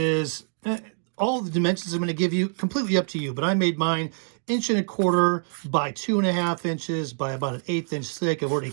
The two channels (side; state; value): left; silent; digital silence